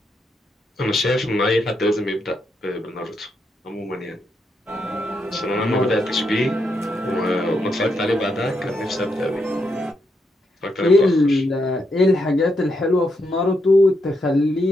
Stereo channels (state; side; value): normal; both; correlation 0.80